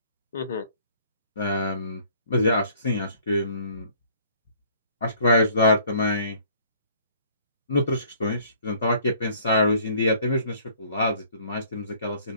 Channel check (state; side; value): inverted; both; correlation -0.57